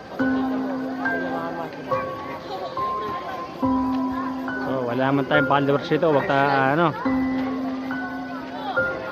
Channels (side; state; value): both; identical; correlation 1.00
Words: So wala naman tayong followers dito. Wag ta ano.